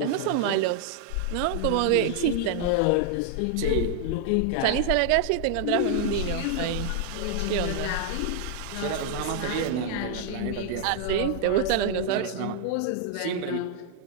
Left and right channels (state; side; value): different; both; correlation 0.00